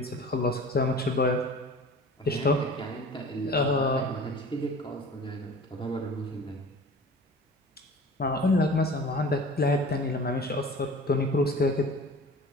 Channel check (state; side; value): normal; both; correlation 0.41